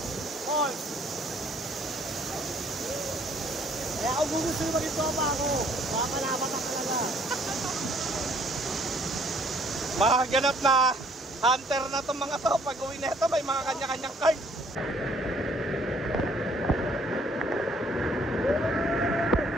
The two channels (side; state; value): both; normal; correlation 0.62